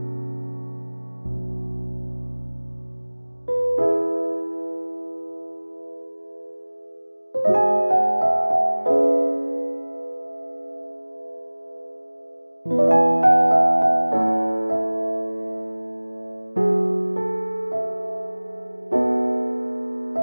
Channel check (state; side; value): inverted; both; correlation -1.00